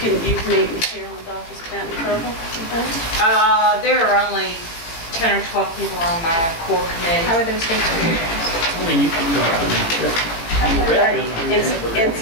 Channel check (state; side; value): late; right; 18 ms